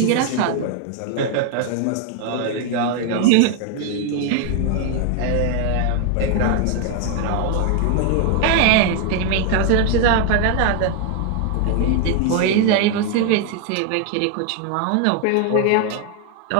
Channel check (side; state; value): both; different; correlation 0.00